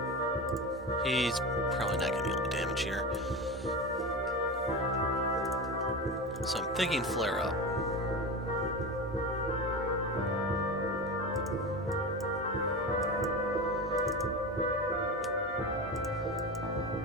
He's probably not going to be able to damage here. So I'm thinking flare up.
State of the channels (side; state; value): both; normal; correlation 0.24